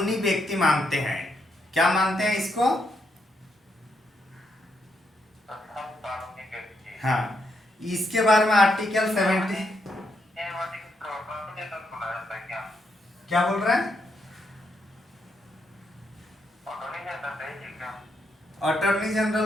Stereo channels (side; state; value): both; normal; correlation 0.79